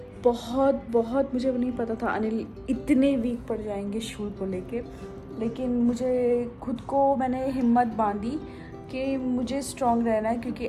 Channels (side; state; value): both; identical; correlation 1.00